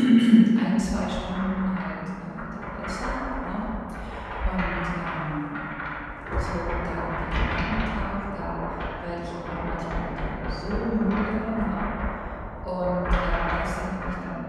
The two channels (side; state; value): both; identical; correlation 1.00